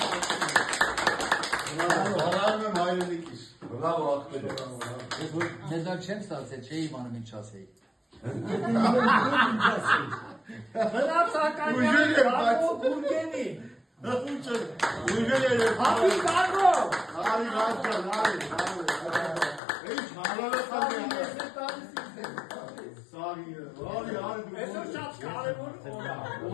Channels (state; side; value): drops out; right; at 19.6 s